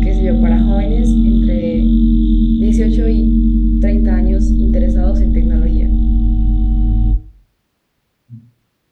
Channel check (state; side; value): identical; both; correlation 1.00